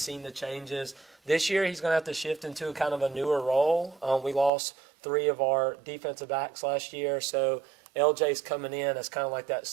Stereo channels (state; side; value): drops out; left; at 4.5 s